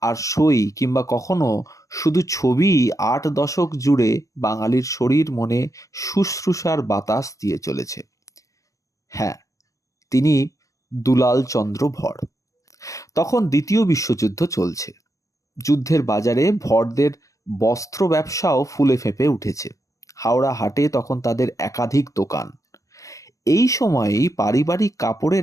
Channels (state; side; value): late; right; 0.16 ms